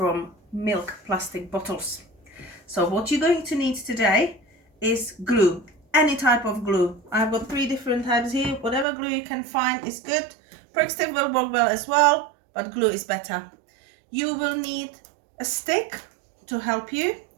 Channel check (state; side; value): drops out; left; at 8.8 s